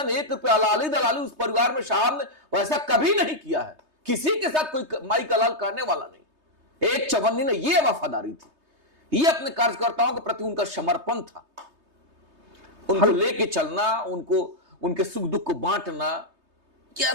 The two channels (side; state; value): left; late; 3.2 ms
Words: 1 रुपया अलाली दलाली उस परिवार में साहब ने वैसा कभी नहीं किया है। किसी के साथ कोई माई कलाल करने वाला नहीं। एक चवन्नी ने ये वफादारी थी, ये अपने कार्यकर्ताओं के प्रति उनका समर्पण था, उनको लेके चलना, उनको उनके सुख दुख को बांटना,